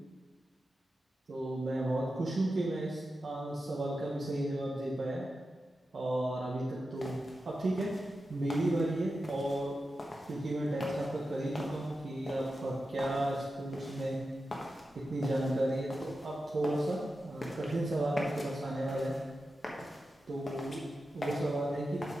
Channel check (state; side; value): normal; both; correlation 0.91